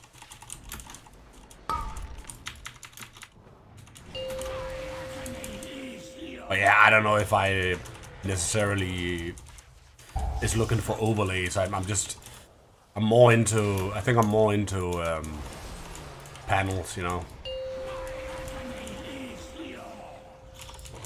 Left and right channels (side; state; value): both; identical; correlation 1.00